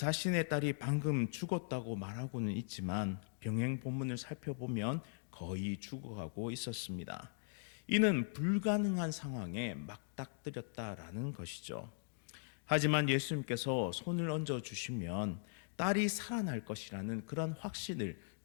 딸이 방금 죽었다고 말하고는 있지만 병행 본문을 살펴보면 거의 죽어가고 있었습니다. 이는 불가능한 상황에 맞닥뜨렸다라는 것이죠. 하지만 예수님께서 손을 얹어 주시면 딸이 살아날 것이라는 그런 확신을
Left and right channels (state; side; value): silent; right; digital silence